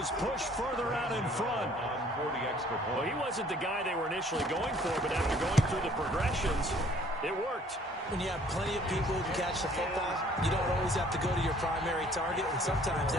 push further out in front. Well, he wasn't the guy they were initially going for, but after going through the progressions, it worked. When you have plenty of people who can catch the football, you don't always have to go to your primary target, and sometimes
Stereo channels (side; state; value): both; normal; correlation 0.57